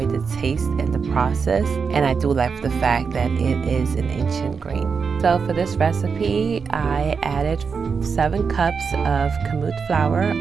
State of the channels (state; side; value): quieter; left; 5.6 dB